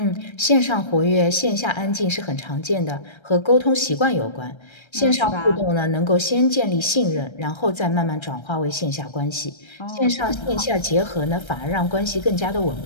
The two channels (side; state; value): right; late; 1.3 ms